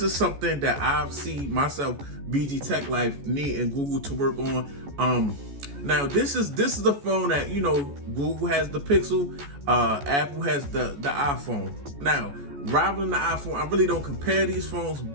is something that I've seen myself, BG Tech Life, need and Google to work on. Now this is the phone that, Google has the Pixel, Apple has the iPhone. Now, rivaling the iPhone, I really don't compare these phones,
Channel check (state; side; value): late; left; 14 ms